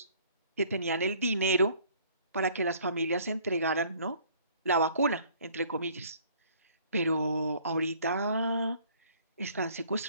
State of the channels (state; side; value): inverted; both; correlation -0.57